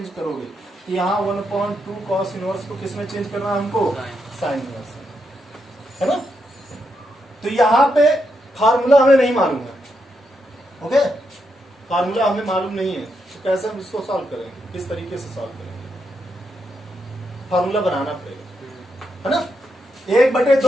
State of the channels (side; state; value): both; normal; correlation 0.82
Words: करोगे। यहाँ 1/2 कॉस इनवर्स को किसमें चेंज करना है हमको, साइन इनवर्स में, है ना। तो यहाँ पे फार्मूला हमें नहीं मालूम है, ओके, फार्मूला हमें मालूम नहीं है, तो कैसे हम इसको सॉल्व करेंगे, किस तरीके से सॉल्व करेंगे, फार्मूला बनाना पड़ेगा, है ना।